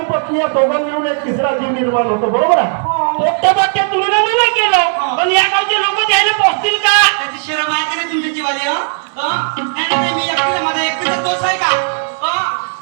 पत्नी या दोघांनी मिळून एक तिसरा जीव निर्माण होतो. बरोबर आहे? पोट्टे बाट्टे तुम्ही नाही केलं, पण या गावचे लोक द्यायला पोहोचतील का? त्याची शरम आहे का नाही तुमच्या जीवाली? नाही मी एकटीला, माझा एकटीचा दोष आहे का?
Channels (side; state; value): left; silent; digital silence